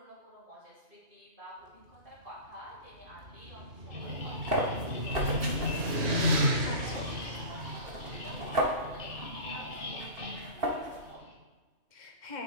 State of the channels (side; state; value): left; late; 2.7 ms